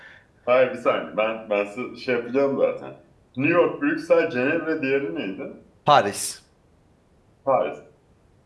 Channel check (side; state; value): both; identical; correlation 1.00